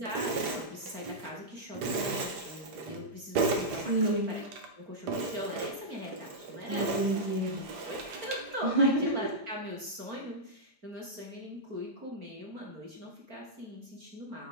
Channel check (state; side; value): late; left; 5.0 ms